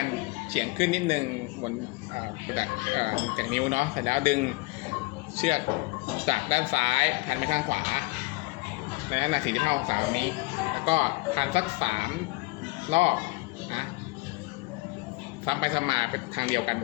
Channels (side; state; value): right; quieter; 24.5 dB